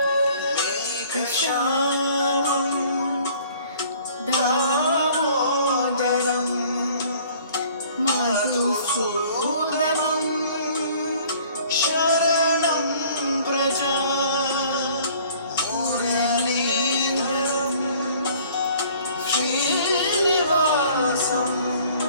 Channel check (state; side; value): inverted; both; correlation -0.54